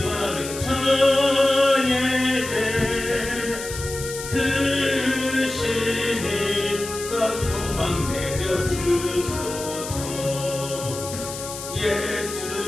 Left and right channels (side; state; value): left; noise; hiss, 9 dB below the sound